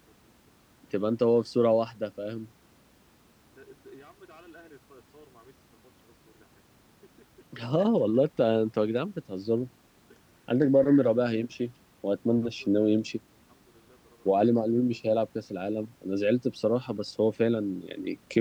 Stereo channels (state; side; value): identical; both; correlation 1.00